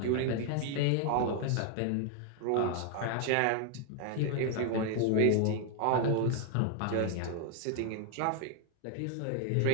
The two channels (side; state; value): both; different; correlation 0.00